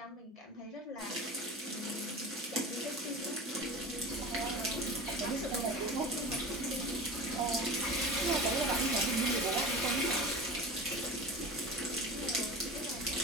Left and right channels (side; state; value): both; normal; correlation 0.32